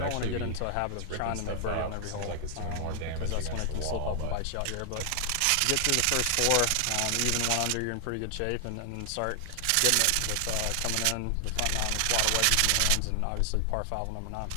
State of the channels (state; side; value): different; both; correlation 0.00